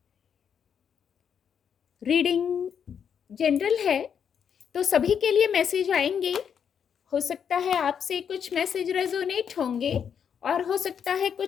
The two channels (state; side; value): quieter; right; 7.7 dB